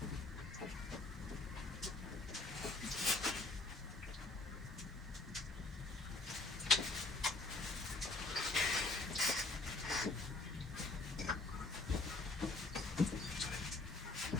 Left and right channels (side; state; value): right; quieter; 3.2 dB